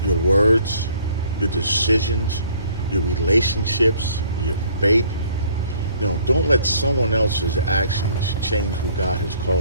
Your words, your decisions, your relationships, your faith. You know, don't let someone else's actions change who God has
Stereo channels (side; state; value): both; inverted; correlation -0.59